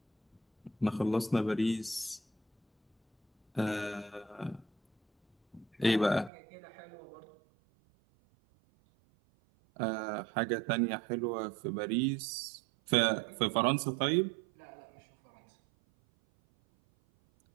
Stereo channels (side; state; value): left; drops out; at 6.3 s